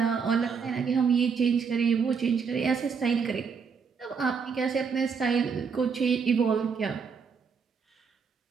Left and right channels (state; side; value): quieter; left; 5.9 dB